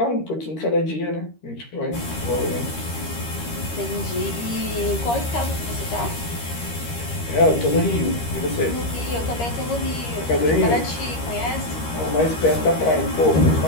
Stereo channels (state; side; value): late; right; 13 ms